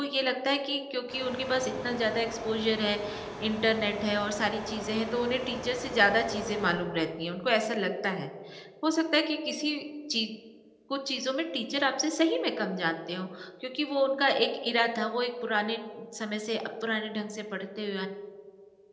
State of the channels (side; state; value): both; identical; correlation 1.00